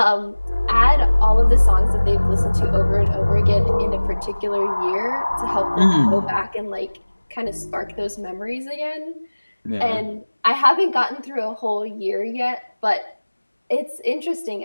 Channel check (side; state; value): both; inverted; correlation -1.00